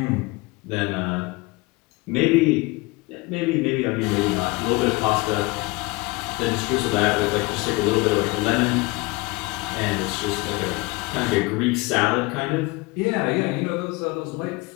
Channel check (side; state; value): right; quieter; 24.2 dB